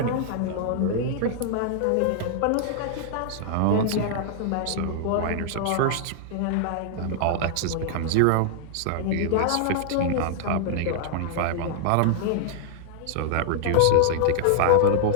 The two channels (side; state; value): both; different; correlation -0.01